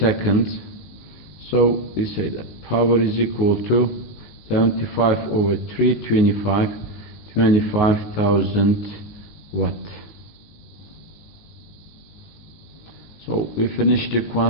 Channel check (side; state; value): right; late; 19 ms